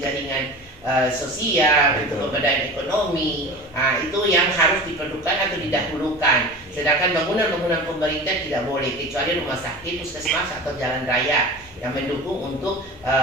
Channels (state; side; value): normal; both; correlation 0.34